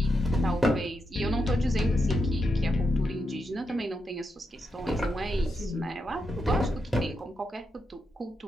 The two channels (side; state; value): both; normal; correlation 0.85